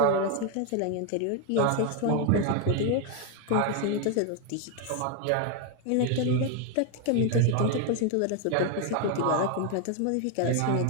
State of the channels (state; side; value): different; both; correlation 0.01